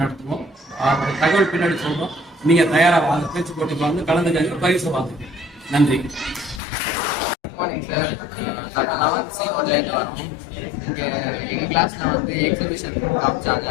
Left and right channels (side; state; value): right; drops out; at 6.6 s